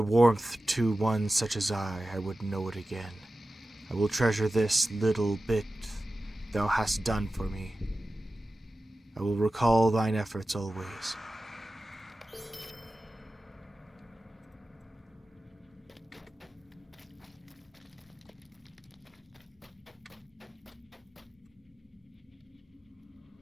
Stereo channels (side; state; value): both; normal; correlation 0.94